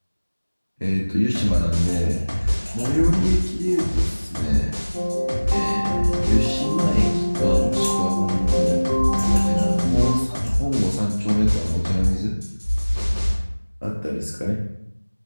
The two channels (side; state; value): both; inverted; correlation -1.00